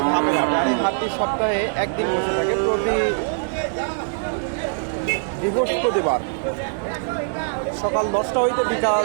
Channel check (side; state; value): left; silent; 60 dB below the other